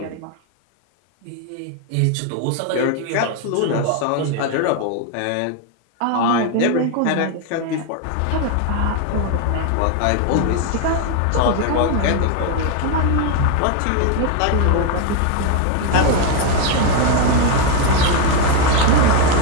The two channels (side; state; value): both; different; correlation 0.01